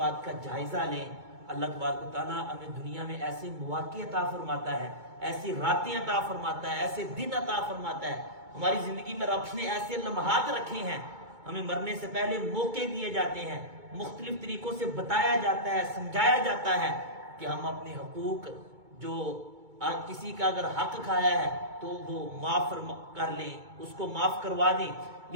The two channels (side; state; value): left; late; 2.2 ms